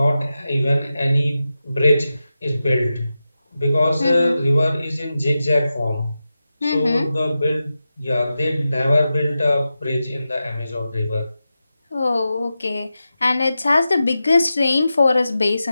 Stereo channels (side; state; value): both; inverted; correlation -0.91